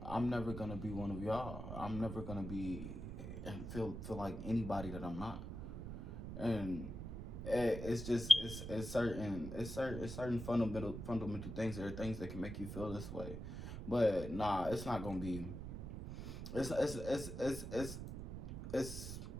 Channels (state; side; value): noise; right; rumble, 7 dB below the sound